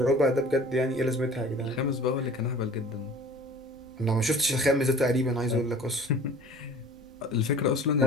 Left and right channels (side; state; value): both; normal; correlation 0.45